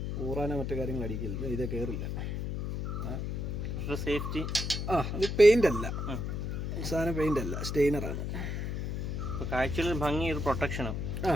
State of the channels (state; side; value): noise; left; hum, 3 dB below the sound